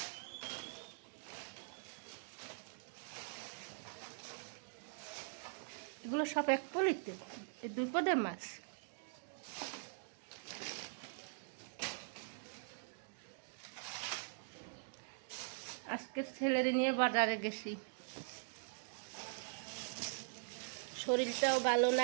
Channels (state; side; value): silent; left; digital silence